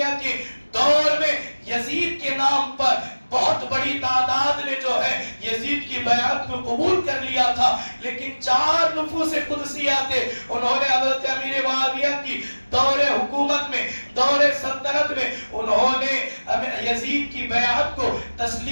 کے دور میں یزید کے نام پر بہت بڑی تعداد نے جو ہے یزید کی بیعت کو قبول کر لیا تھا. لیکن 4 نفوس قدسیہ تھے، انہوں نے حضرت امیر معاویہ کی دور حکومت میں، دور سلطنت میں انہوں نے یزید کی بیعت کو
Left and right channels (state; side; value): inverted; both; correlation -1.00